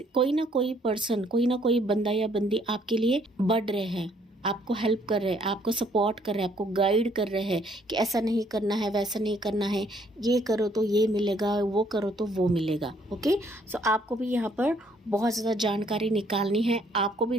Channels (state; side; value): normal; both; correlation 0.65